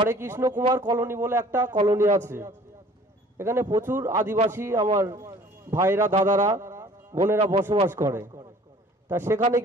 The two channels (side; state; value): both; normal; correlation 0.51